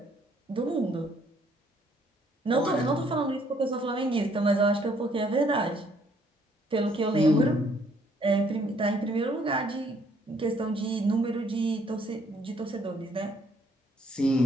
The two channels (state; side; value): normal; both; correlation 0.65